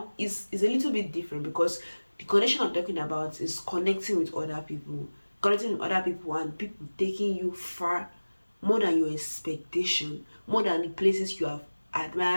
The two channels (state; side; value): inverted; both; correlation -1.00